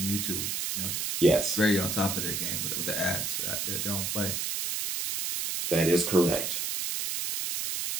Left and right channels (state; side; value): noise; right; hiss, 1 dB below the sound